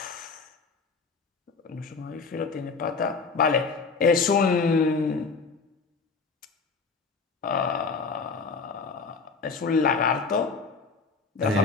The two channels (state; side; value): quieter; right; 4.6 dB